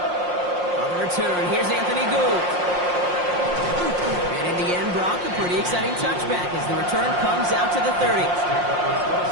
On the return, here's Anthony Gould. And in the end, Brock, a pretty exciting touchback as the return comes out to the 30.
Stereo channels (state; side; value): late; left; 5.6 ms